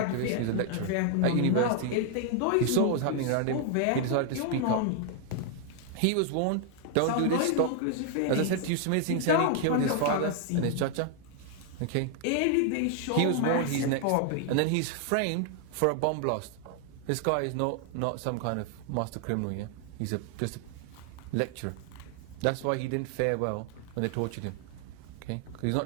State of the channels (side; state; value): both; different; correlation 0.00